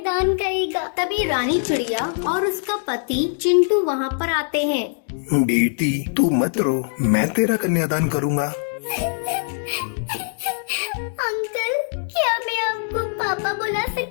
करेगा। तभी रानी चिड़िया और उसका पति चिंटू वहाँ पर आते हैं। बेटी तू मत रो, मैं तेरा कन्यादान करूँगा। अंकल, क्या मैं आपको पापा बुला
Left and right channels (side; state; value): right; silent; digital silence